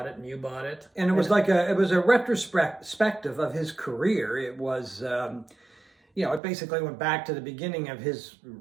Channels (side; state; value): left; drops out; at 6.4 s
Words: it and you bought it. And it was a retrospective of his career. It was it basically went back to the beginning of his